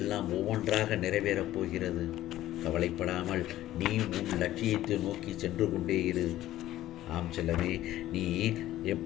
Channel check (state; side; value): quieter; right; 14.2 dB